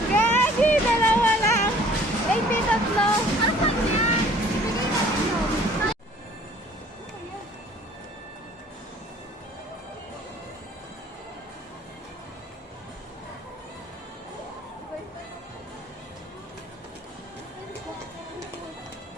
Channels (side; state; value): both; normal; correlation 0.53